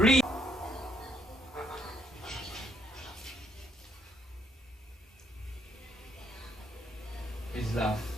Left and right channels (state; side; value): normal; both; correlation 0.71